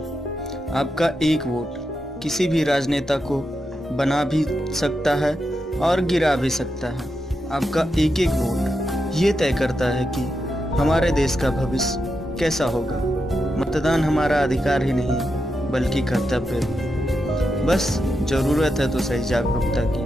आपका एक वोट किसी भी राजनेता को बना भी सकता है और गिरा भी सकता है। आपका एक एक वोट ये तय करता है कि हमारे देश का भविष्य कैसा होगा। मतदान हमारा अधिकार ही नहीं बल्कि कर्तव्य है। बस ज़रूरत है तो सही जागरूकता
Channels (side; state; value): both; normal; correlation 0.86